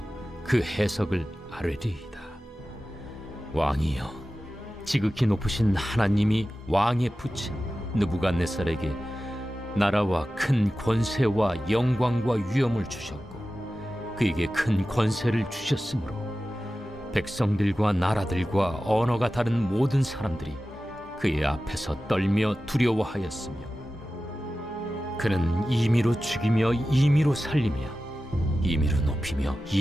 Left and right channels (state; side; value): normal; both; correlation 0.94